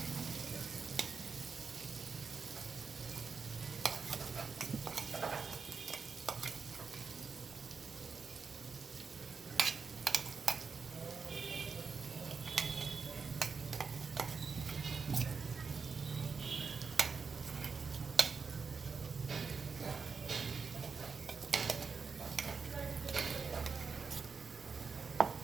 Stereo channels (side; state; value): left; quieter; 5.2 dB